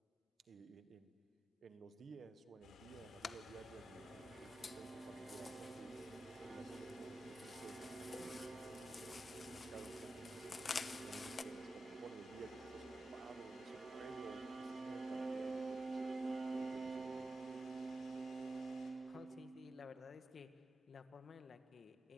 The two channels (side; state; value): both; normal; correlation 0.91